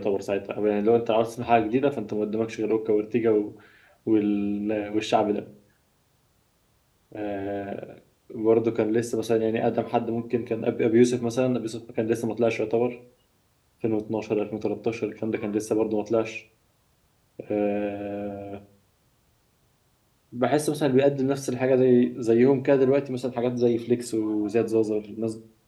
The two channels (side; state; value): both; identical; correlation 1.00